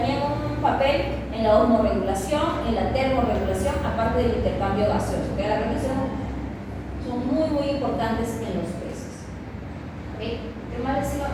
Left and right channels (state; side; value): identical; both; correlation 1.00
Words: un papel en la osmorregulación, en la termorregulación, aparte del intercambio gaseoso. ¿Okay? Las branquias son muy, muy importantes en los peces. ¿Okay? ¿Qué más